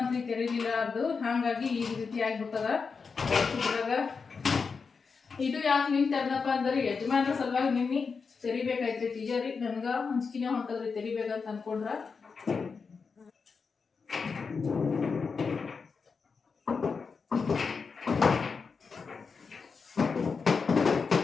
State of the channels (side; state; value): right; quieter; 5.2 dB